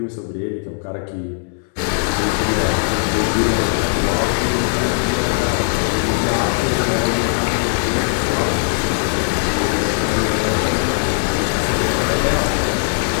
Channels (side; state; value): right; silent; 67 dB below the other